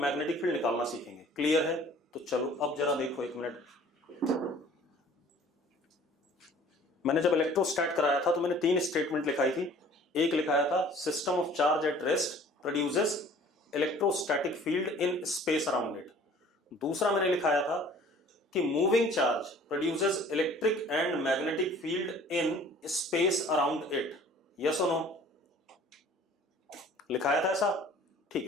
मैग्नेटिक फील्ड निकालना सीखेंगे। क्लियर है? तो चलो अब जरा देखो, एक मिनट। मैंने जब इलेक्ट्रोस्टैट कराया था तो मैंने 3 स्टेटमेंट लिखाई थी। एक लिखाया था system of charge at rest produces electrostatic field in space around it. दूसरा मैंने लिखाया था कि moving charge produces electric and magnetic field in space around it. Yes और नो? लिखाया था ऐसा? ठीक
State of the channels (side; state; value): both; normal; correlation 0.51